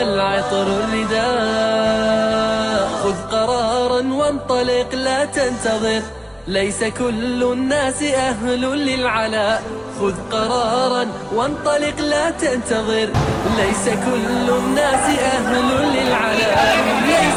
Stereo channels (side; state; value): both; identical; correlation 1.00